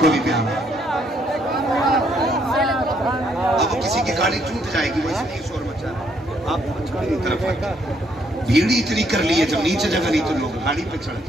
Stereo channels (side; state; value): both; normal; correlation 0.71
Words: को भी प्यारा। अब किसी की गाड़ी टूट जाएगी, वो इसलिए शोर मचा रहा है। आप तरफ भीड़ इतनी कर ली है, जब नीचे जगह नहीं तो लोग गाड़ी पे चढ़